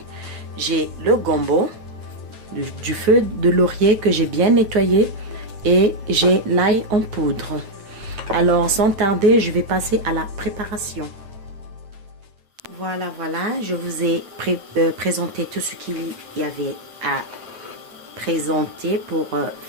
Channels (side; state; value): left; late; 9.2 ms